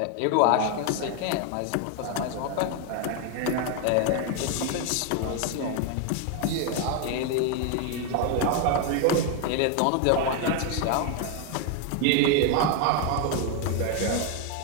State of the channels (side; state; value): both; different; correlation 0.01